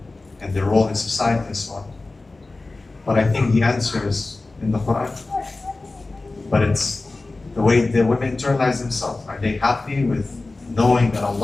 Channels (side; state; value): right; quieter; 3.3 dB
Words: and their role in society and so on. But I think the answer is in the Quran. But it's the way the women internalize themselves. Are they happy with knowing that